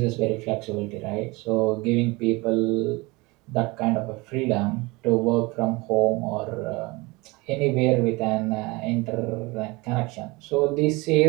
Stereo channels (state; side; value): quieter; left; 24.1 dB